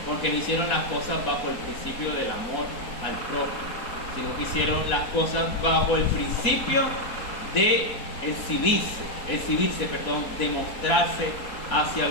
porque no hicieron las cosas bajo el principio del amor al propio, sino que hicieron las cosas bajo el principio de exhibirse, de mostrarse hacia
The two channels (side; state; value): right; late; 4.2 ms